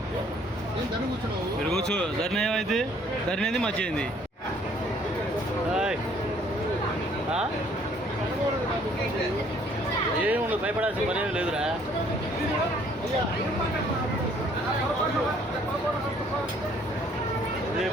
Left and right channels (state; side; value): normal; both; correlation 0.61